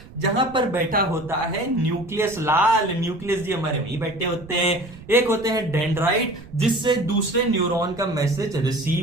जहां पर बैठा होता है न्यूक्लियस। लाल न्यूक्लियस जी हमारे वहीं बैठे होते हैं। एक होते हैं डेंड्राइट, जिससे दूसरे न्यूरॉन का मैसेज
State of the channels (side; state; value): right; noise; rumble, 19 dB below the sound